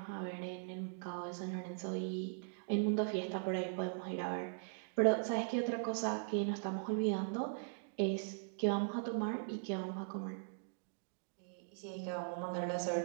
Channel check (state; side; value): silent; left; digital silence